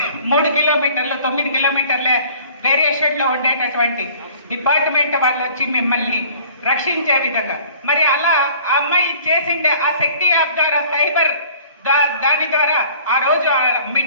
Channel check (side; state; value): both; inverted; correlation -0.51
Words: 3 కిలోమీటర్లు 9 కిలోమీటర్ల వేరియేషన్ లో ఉండేటటువంటి డిపార్ట్మెంట్ వాళ్ళు వచ్చి మిమ్మల్ని రక్షించే విధంగా, మరి అలా ఆ అమ్మాయి చేసిండే ఆ శక్తి యాప్ ద్వారా సైబర్ దాని ద్వారా ఆ రోజు